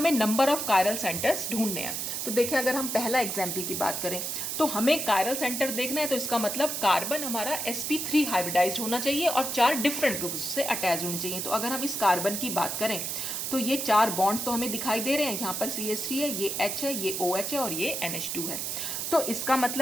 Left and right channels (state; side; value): noise; right; hiss, 3 dB below the sound